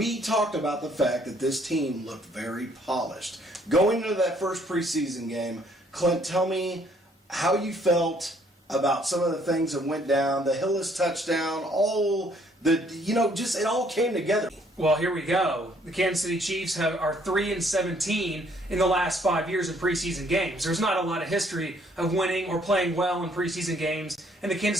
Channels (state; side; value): normal; both; correlation 0.64